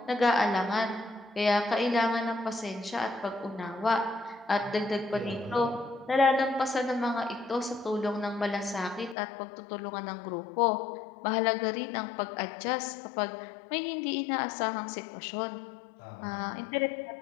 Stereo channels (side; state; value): right; drops out; at 9.2 s